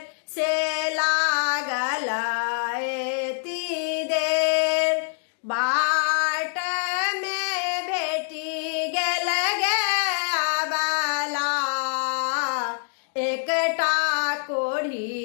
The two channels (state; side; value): silent; right; digital silence